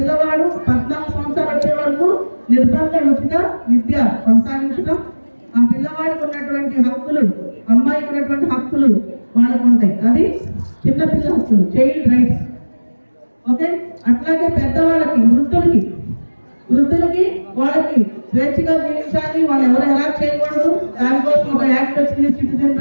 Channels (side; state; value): both; inverted; correlation -1.00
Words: 14 సంవత్సరాలు వచ్చే వరకు నిర్బంధ ఉచిత విద్య కొనసాగించడం, ఆ పిల్లవాడికి ఉన్నటువంటి హక్కులు, అమ్మాయికి ఉన్నటువంటి హక్కులు వాళ్ళకు ఉంటాయి. అది చిన్నపిల్ల హక్కులు, చైల్డ్ రైట్స్. ఓకే, అట్లాగే పెద్దవాళ్ళకి, వృద్ధులకి వాళ్ళకి స్వేచ్ఛగా జీవించాలి, వాళ్ళు ఎవరు ఎలా చేయకూడదు, దానికోసం ఒక యాక్ట్ వచ్చింది, సిటిజన్